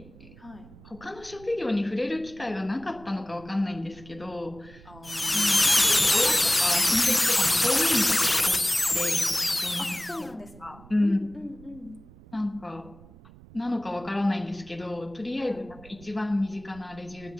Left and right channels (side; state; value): right; noise; rumble, 21 dB below the sound